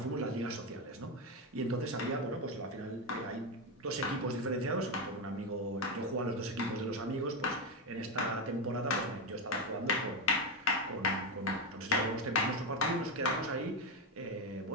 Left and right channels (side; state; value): both; normal; correlation 0.10